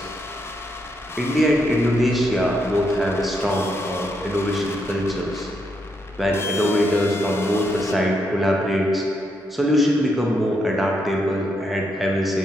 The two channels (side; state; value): both; normal; correlation 0.79